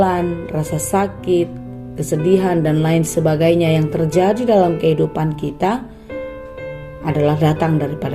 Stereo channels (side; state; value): both; identical; correlation 1.00